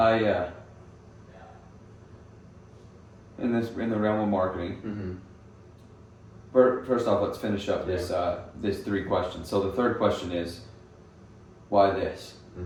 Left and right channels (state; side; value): identical; both; correlation 1.00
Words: In the realm of marketing. Mm-hmm. First off, let's finish up this 3 questions. So the third question is, why this?